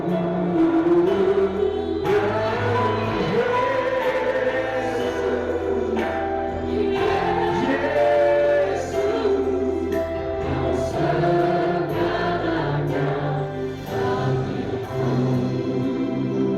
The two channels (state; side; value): identical; both; correlation 1.00